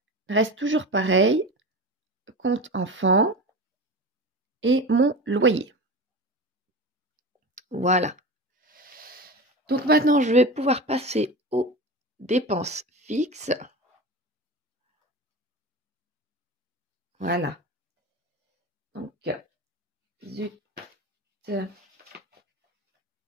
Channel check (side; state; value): both; normal; correlation 0.28